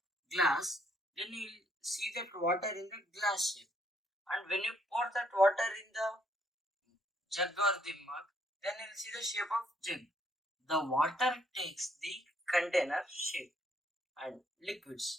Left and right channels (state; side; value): normal; both; correlation 0.69